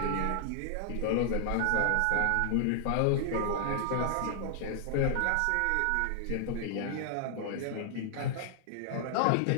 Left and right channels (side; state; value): both; different; correlation 0.00